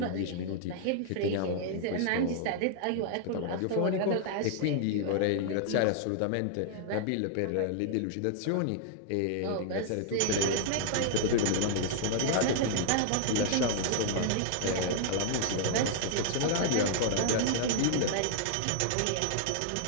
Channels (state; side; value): different; both; correlation 0.00